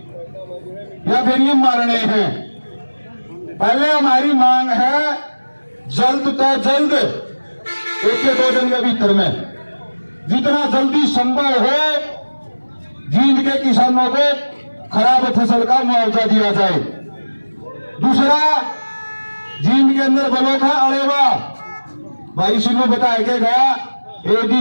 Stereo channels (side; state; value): both; inverted; correlation -1.00